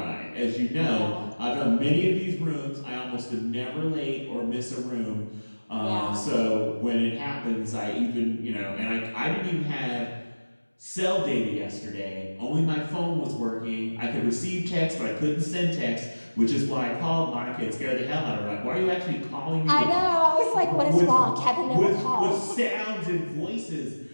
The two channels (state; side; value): inverted; both; correlation -1.00